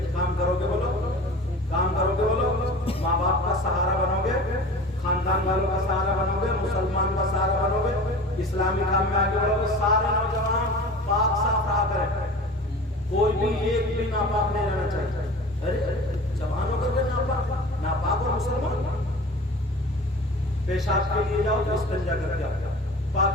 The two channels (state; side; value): normal; both; correlation 0.39